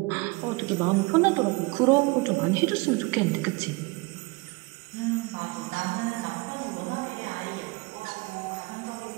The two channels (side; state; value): left; quieter; 25.6 dB